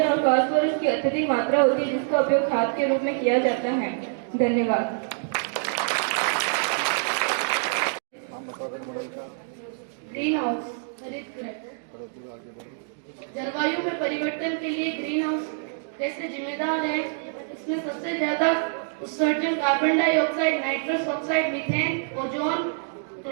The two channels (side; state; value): left; silent; digital silence